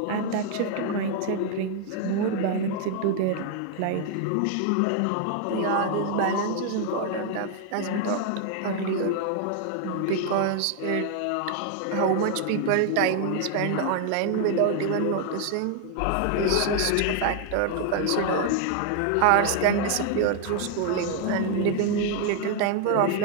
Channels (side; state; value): both; different; correlation 0.00